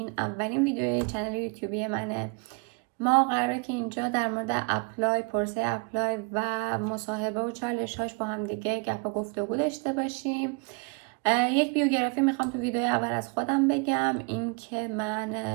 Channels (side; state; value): left; quieter; 34.1 dB